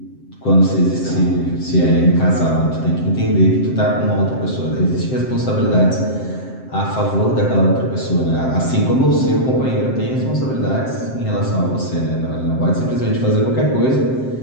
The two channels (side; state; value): right; late; 7.7 ms